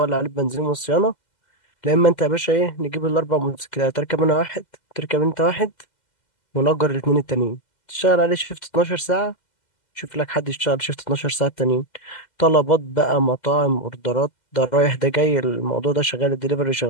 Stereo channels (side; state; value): right; late; 2.0 ms